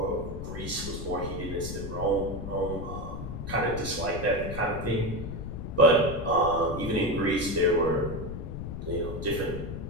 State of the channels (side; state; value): left; noise; rumble, 6 dB below the sound